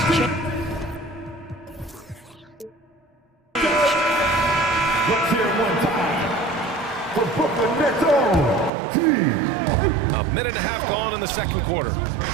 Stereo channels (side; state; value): left; drops out; at 8.7 s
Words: changed. Let's hear it one time for Brooklyn Nets own Team. A minute and a half gone in the second quarter.